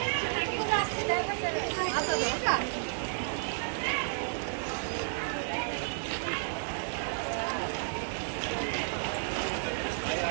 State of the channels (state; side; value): silent; left; digital silence